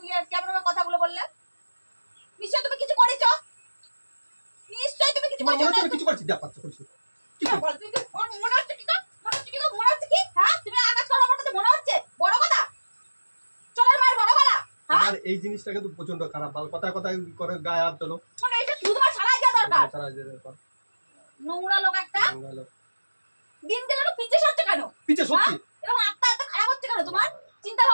কেমন ভাবে কথাগুলো বললে? নিশ্চয় তুমি কিছু করেছো, নিশ্চয় তুমি কিছু তোমার মনে হচ্ছে করেছো। আমি কিছু করছি? যা পাচ্ছ করছি কি হ্যাঁ, করছি? বল, তুমি মনে হচ্ছে কি? মনে হচ্ছে কি? মনে হচ্ছে কি? হ্যাঁ তুমি আকাশ করার মতো মনে হচ্ছে? বড় কথা চলের মায়ের বড় গলা। হ্যাঁ আমার এই জিনিসটা কিন্তু প্রচন্ড খারাপ, ভালো কথায় কথায় করে গায়ে হাত তোলো। মানে এটা শুধু তোমার সারাই দেওয়া দরকার। সারা যেতে পার। নোংরা লোক একটা। ভালো। দিন গেলে তো পিছে সরছে কেন? পিছে সত্যি এরকম আত্মা এত খারাপ হচ্ছে কেন তোমার? চিন্তা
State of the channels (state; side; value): inverted; both; correlation -1.00